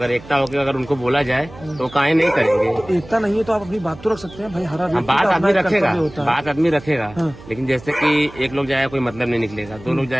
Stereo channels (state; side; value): noise; right; hum, 19 dB below the sound